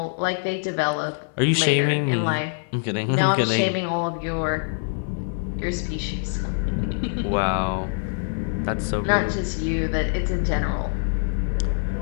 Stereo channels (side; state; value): right; silent; 61 dB below the other